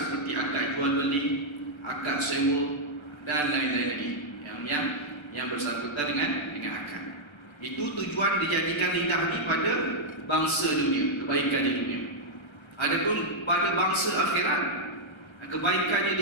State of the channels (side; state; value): right; late; 1.3 ms